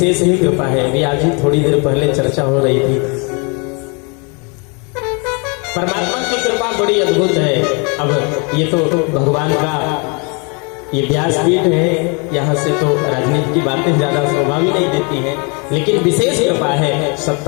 ही कृपा है। अभी आज ही थोड़ी देर पहले चर्चा हो रही थी, परमात्मा की कृपा बड़ी अद्भुत है। अब ये तो भगवान का ये व्यासपीठ है, यहाँ से तो राजनीति की बातें ज्यादा शोभा भी नहीं देती हैं, लेकिन विशेष कृपा है।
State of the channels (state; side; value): quieter; right; 33.5 dB